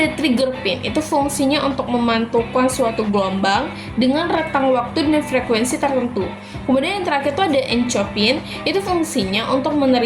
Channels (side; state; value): both; identical; correlation 1.00